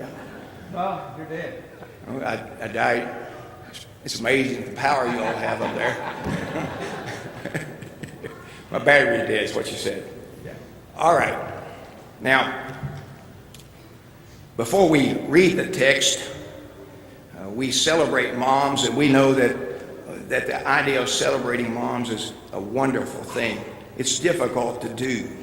Oh, you're dead. I died. It's amazing the power you all have up there. My battery is dead, is what you said. All right. Now, before we read the text, we celebrate moms, and we know that the idea of celebrating moms is a wonderful thing. It's difficult to do.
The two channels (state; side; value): identical; both; correlation 1.00